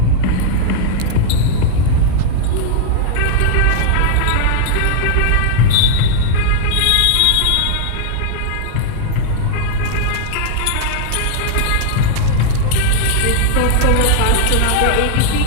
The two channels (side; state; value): both; different; correlation -0.01